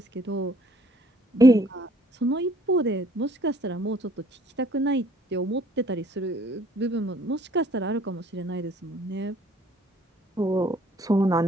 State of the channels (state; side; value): normal; both; correlation 0.60